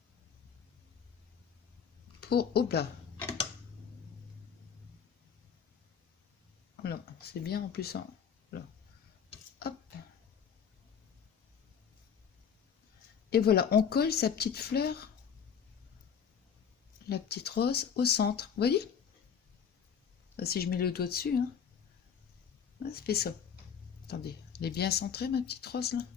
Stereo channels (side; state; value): right; quieter; 7.4 dB